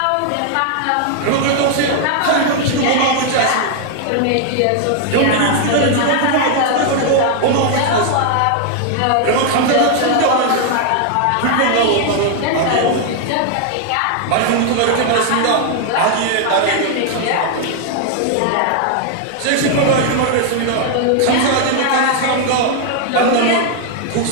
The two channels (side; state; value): both; different; correlation 0.00